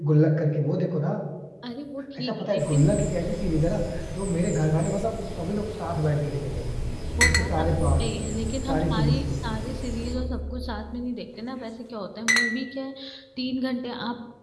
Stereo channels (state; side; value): identical; both; correlation 1.00